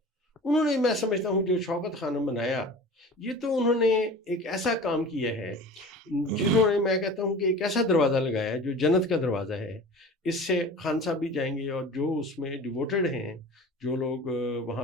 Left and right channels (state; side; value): normal; both; correlation 0.38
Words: انہوں نے، میں سمجھتا ہوں جو شوکت خانم بنایا، یہ تو انہوں نے ایک ایسا کام کیا ہے جنہوں نے، میں کہتا ہوں کہ ایک ایسا دروازہ لگایا ہے جو جنت کا دروازہ ہے. اس سے خان صاحب بھی جائیں گے، اور جو اس میں ڈیووٹڈ ہیں، جو لوگ وہاں